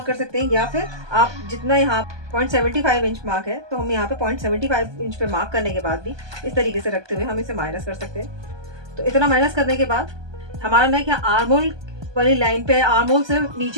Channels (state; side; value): late; left; 1.2 ms